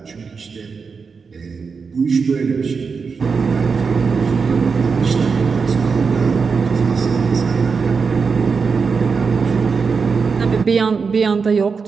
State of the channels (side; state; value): left; quieter; 5.2 dB